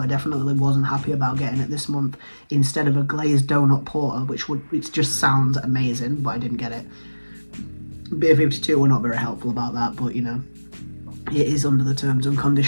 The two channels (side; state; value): both; inverted; correlation -1.00